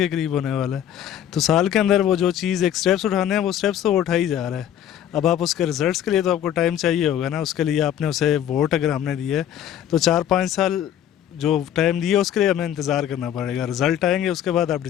करीब होने वाला है। तो साल के अंदर वो जो चीज़ एक स्टेप्स उठाने हैं वो स्टेप्स तो वो उठा ही जा रहा है। अब आप उसके रिजल्ट्स के लिए तो आपको टाइम चाहिए होगा ना, उसके लिए आपने उसे वोट अगर हमने दिए तो 4-5 साल जो टाइम दिए उसके लिए हमें इंतज़ार करना पड़ेगा। रिज़ल्ट आएंगे उसके बाद आप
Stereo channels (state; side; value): quieter; right; 10.5 dB